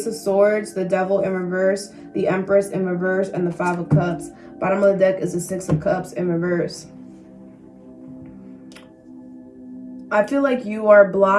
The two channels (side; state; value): both; identical; correlation 1.00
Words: of Swords, the Devil in reverse, the Empress in reverse, and the 5 of Cups. Bottom of the deck is the 6 of Cups in reverse. I feel like you are